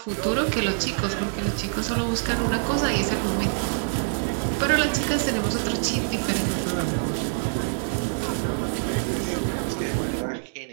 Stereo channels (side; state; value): left; silent; digital silence